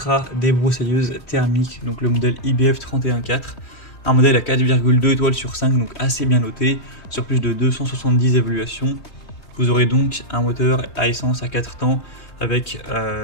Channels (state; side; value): late; right; 3.2 ms